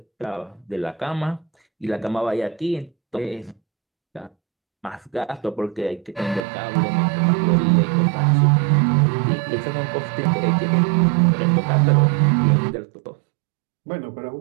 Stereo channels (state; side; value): drops out; left; at 6.5 s